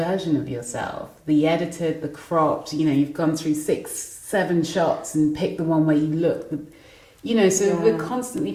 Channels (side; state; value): both; identical; correlation 1.00